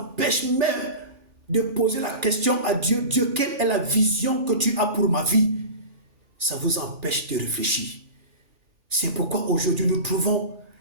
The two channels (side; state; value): left; late; 3.4 ms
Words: même de poser la question à Dieu. Dieu, quelle est la vision que tu as pour ma vie? Ça vous empêche de réfléchir. C'est pourquoi aujourd'hui nous trouvons